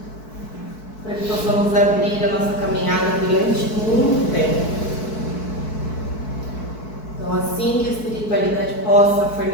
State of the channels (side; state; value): right; late; 4.6 ms